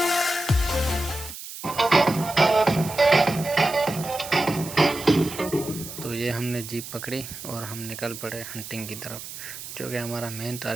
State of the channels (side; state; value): right; noise; hiss, 11 dB below the sound